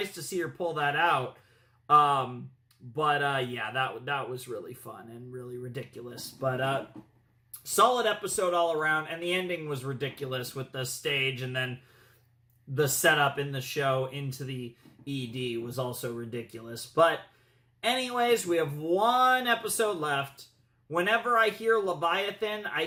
to see her pull that out. That was really fun and really ridiculous. But solid episode all around, and the ending was ridiculous with the stage, and then the setup in the show into the ED was also ridiculous. But anyways, we have one episode left. Whenever I hear Leviathan, I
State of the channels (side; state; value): both; identical; correlation 1.00